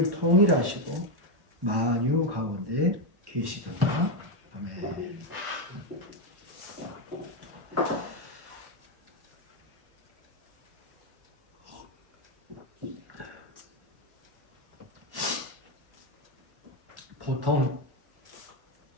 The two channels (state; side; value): late; left; 1.1 ms